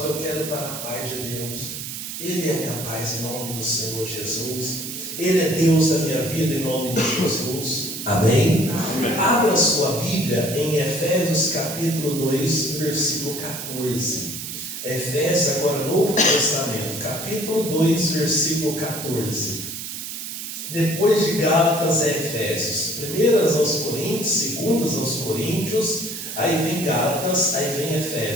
eu quero estar na paz de Deus. Ele é a minha paz em nome do Senhor Jesus. Ele é Deus da minha vida em nome de Jesus. Amém? Amém. Abra sua Bíblia em Efésios capítulo 2, versículo 14. Efésios, agora Novo Testamento, capítulo 2, versículo 14. Depois de Gálatas é Efésios. Primeiras aos Coríntios, segundas aos Coríntios, aí vem Gálatas, aí vem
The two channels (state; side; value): noise; right; hiss, 7 dB below the sound